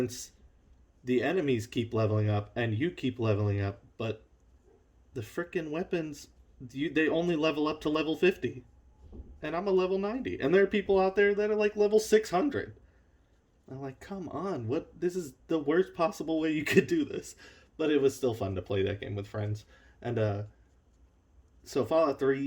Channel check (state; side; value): identical; both; correlation 1.00